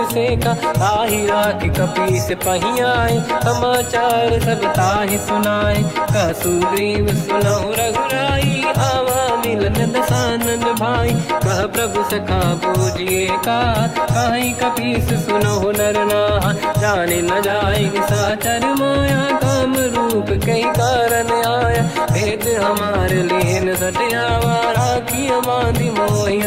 ताहि राखी कपीस पही आए समाचार सब ताहि सुनाए। कह सुग्रीव सुनहु रघुराई आवा मिलन दसानन भाई। कह प्रभु सखा पूजिए का कहीं कपीस सुनहु नर नाहा। जाने न जाएगी साचर माया काम रूप कई कारण आया। भेद हमार लेन सटयावा राखी बांधि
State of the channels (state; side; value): identical; both; correlation 1.00